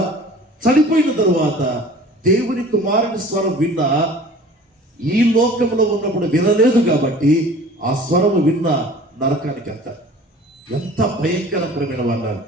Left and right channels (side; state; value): both; normal; correlation 0.46